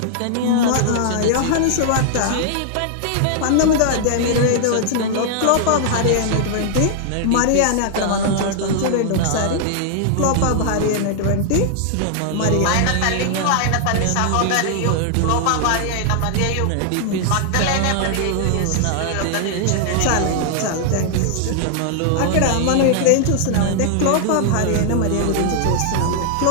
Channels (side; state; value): both; different; correlation 0.00